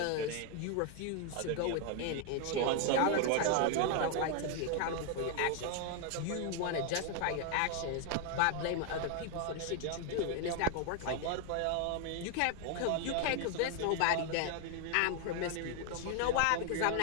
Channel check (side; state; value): both; different; correlation 0.00